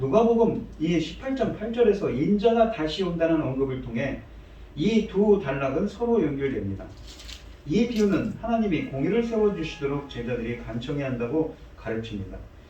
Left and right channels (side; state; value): both; identical; correlation 1.00